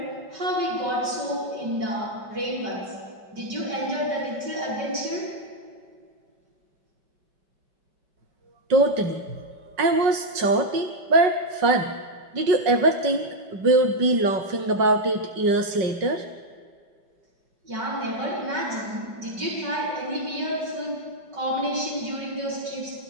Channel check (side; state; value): left; late; 5.3 ms